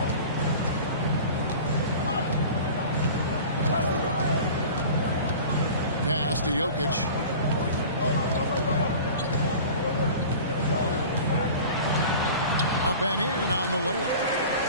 Pass to Jokic. Up and in on the layup.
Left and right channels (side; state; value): both; inverted; correlation -0.39